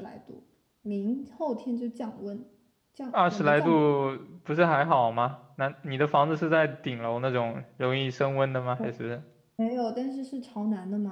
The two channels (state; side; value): identical; both; correlation 1.00